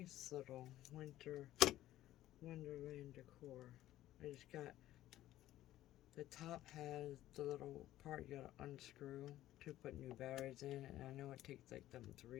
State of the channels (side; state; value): right; quieter; 14.1 dB